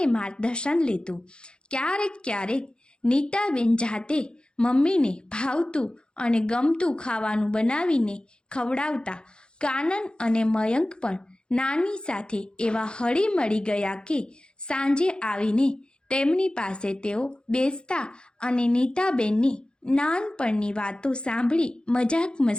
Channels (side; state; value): right; late; 0.050 ms